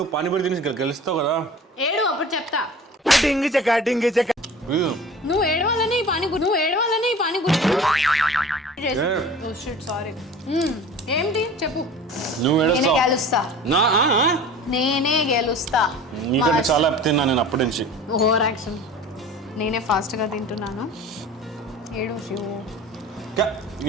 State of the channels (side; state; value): both; normal; correlation 0.40